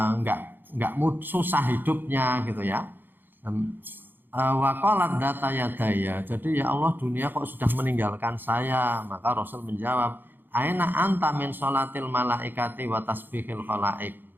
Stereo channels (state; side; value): late; left; 0.095 ms